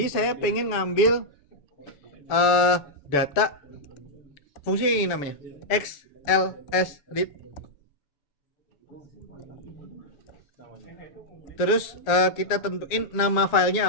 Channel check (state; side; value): late; right; 7.1 ms